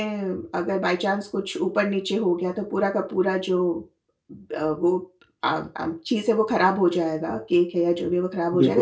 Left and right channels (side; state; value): both; identical; correlation 1.00